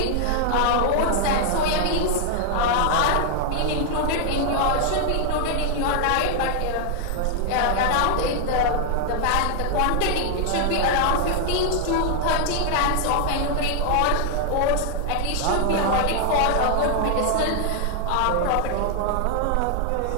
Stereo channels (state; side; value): different; both; correlation 0.00